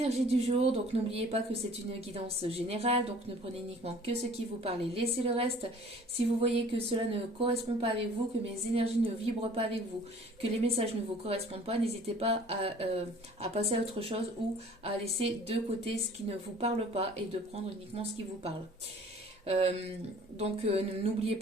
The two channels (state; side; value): normal; both; correlation 0.51